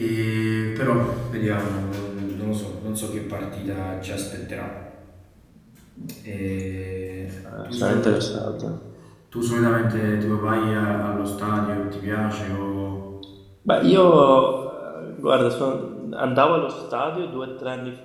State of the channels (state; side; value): identical; both; correlation 1.00